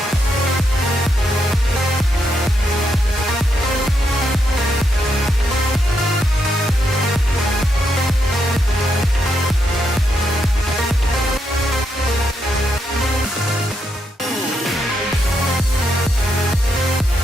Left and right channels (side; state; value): both; normal; correlation 0.80